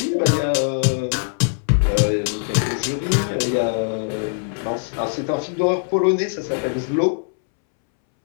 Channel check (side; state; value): right; silent; 65 dB below the other